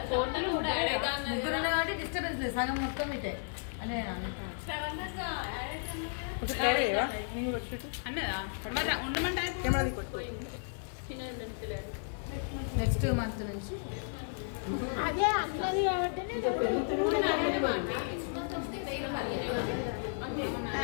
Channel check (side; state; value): right; silent; digital silence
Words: ముగ్గురు ఉన్నారు కాబట్టి డిస్టర్బెన్స్ లేదు. సగం మొత్తం ఇటే అదే ఒకటి కవర్ చేయవా? నేను కూడా వచ్చి అన్నదా ఉండమంటే కెమెరా తీసుకో. నెక్స్ట్ మంత్ నుంచి అదే అన్నది కాబట్టి